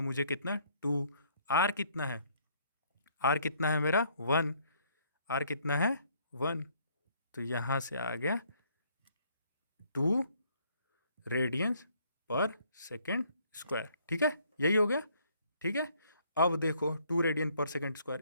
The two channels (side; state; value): both; inverted; correlation -0.65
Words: कितना, 2, आर कितना है, आर कितना है मेरा 1, आर कितना है 1। तो यहाँ से आ गया 2 रेडियंस पर सेकेंड स्क्वायर, ठीक है, यही हो गया, ठीक है। अब देखो 2 रेडियन पर सेकेंड स्क्वायर